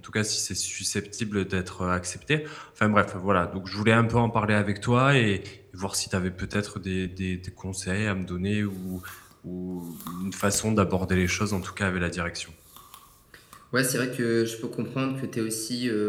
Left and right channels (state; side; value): identical; both; correlation 1.00